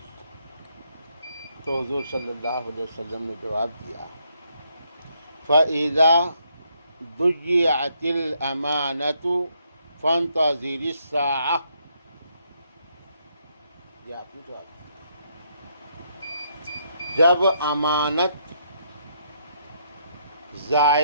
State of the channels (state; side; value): inverted; both; correlation -0.74